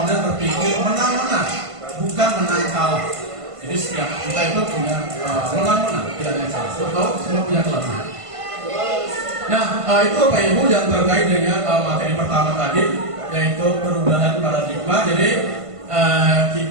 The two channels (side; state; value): left; late; 1.5 ms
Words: berpikir menang-menang, bukan menang kalah. Jadi setiap kita itu punya menang-menang, tidak ada yang kalah. Betul, semua punya kelebihan. Nah, itu Bapak Ibu yang terkait dengan materi pertama tadi, yaitu perubahan paradigma. Jadi